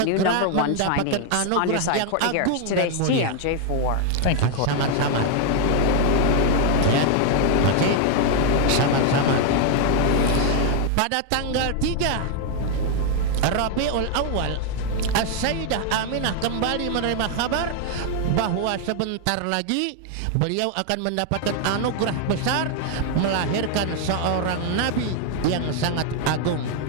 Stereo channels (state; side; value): different; both; correlation 0.00